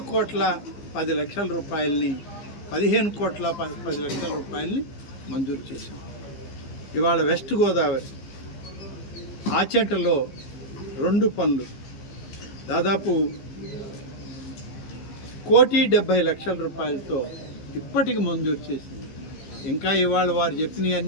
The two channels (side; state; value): right; late; 15 ms